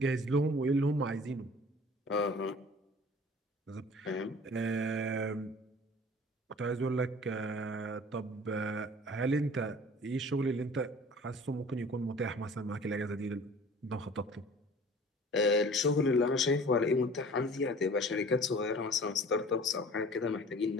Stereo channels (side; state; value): both; normal; correlation 0.46